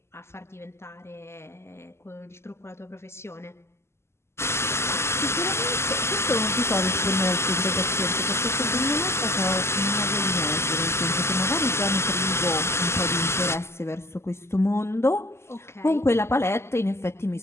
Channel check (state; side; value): late; right; 0.13 ms